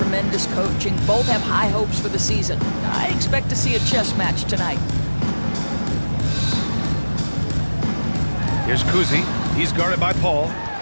coaching. Both have high hopes for the season. I expect to see a chess match tonight. Here's Kuzi. He's guarded by Paul.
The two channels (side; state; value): both; inverted; correlation -1.00